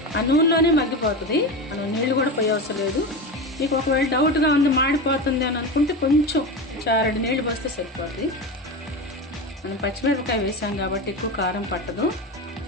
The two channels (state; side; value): normal; both; correlation 0.22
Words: ఆ నూనెలోనే మగ్గిపోతుంది, మనం నీళ్ళు కూడా పోయే అవసరం లేదు. మీకు ఒకవేళ డౌట్గా ఉంది మాడిపోతుంది అని అనుకుంటే కొంచెం 2 నీళ్ళు పోస్తే సరిపోతుంది. మనం పచ్చిమిరపకాయ వేసాం కాబట్టి ఎక్కువ కారం పట్టదు,